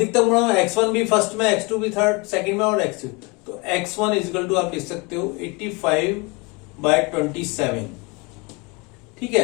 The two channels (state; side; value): quieter; right; 28.2 dB